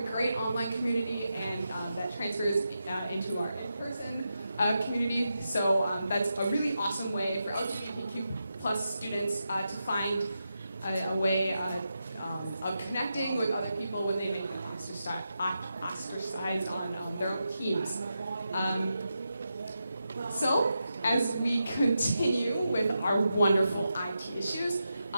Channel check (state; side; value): inverted; both; correlation -0.87